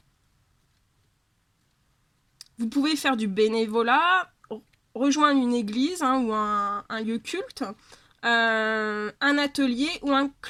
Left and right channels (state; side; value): identical; both; correlation 1.00